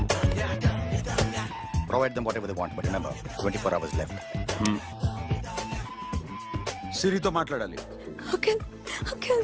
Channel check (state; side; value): identical; both; correlation 1.00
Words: provide them whatever they want, but remember, 24 hours left. సిరితో మాట్లాడాలి. అంకుల్ అంకుల్